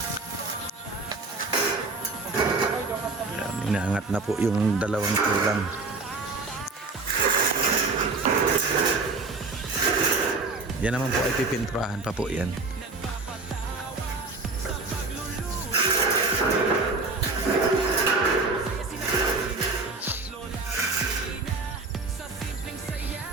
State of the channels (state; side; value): quieter; left; 3.7 dB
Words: Inaangat na po yung dalawang tulang. Yan naman po ay pipintrahan pa po yan.